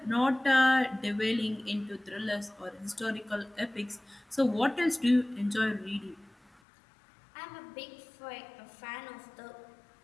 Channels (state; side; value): drops out; right; at 6.6 s